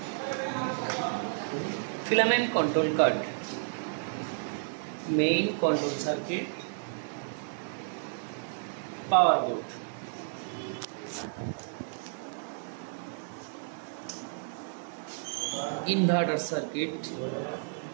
filament control card, main control circuit, power board, inverter circuit,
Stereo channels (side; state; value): left; silent; digital silence